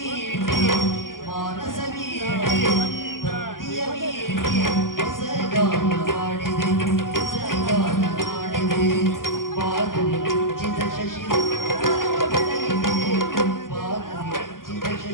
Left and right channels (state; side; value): late; right; 0.91 ms